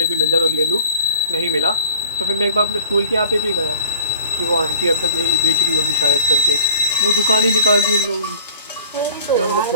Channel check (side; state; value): both; inverted; correlation -0.48